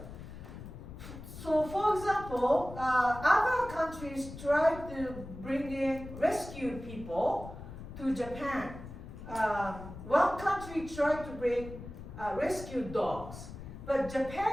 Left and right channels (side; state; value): left; noise; rumble, 12 dB below the sound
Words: So, for example, other countries tried to bring in rescue people to Japan. One country tried to bring rescue dogs, but